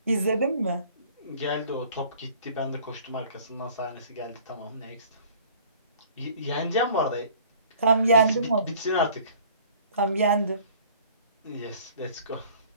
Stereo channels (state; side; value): inverted; both; correlation -0.52